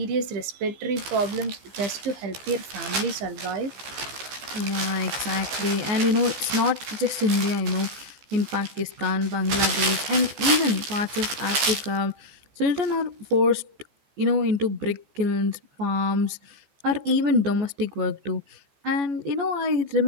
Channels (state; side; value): late; left; 15 ms